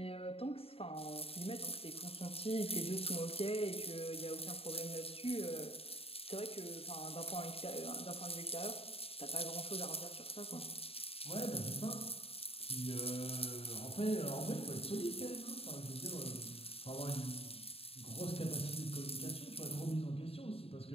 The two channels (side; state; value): right; late; 0.28 ms